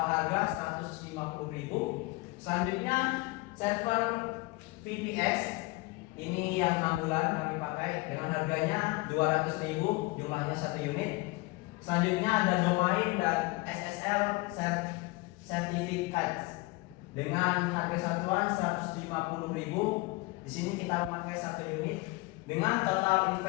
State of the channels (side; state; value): right; quieter; 23.2 dB